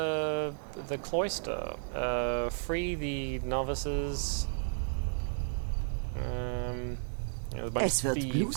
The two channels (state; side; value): silent; left; 56 dB below the other